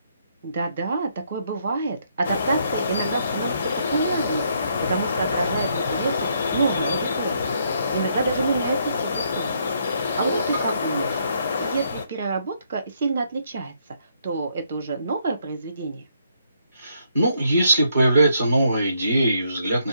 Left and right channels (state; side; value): inverted; both; correlation -0.73